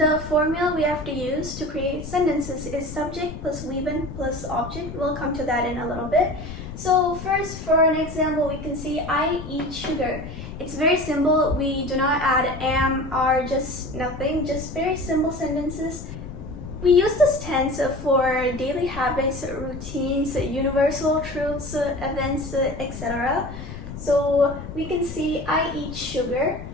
formula we have to use to create sentences is subject plus VN plus object. We'll come to that in a little bit. So first, for an example, we can see I eat sugar. It's very simple. We do not add am, are, just nothing, just very simple sentences. We use this tense for daily habits, routines, universal truths, events, etc. So we can see I eat sugar,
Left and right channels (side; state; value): left; noise; rumble, 10 dB below the sound